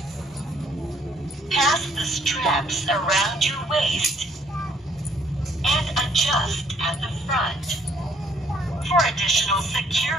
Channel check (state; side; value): normal; both; correlation 0.65